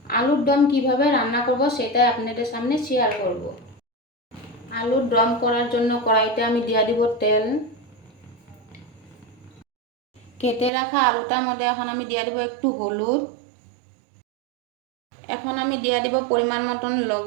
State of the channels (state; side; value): drops out; left; at 10.7 s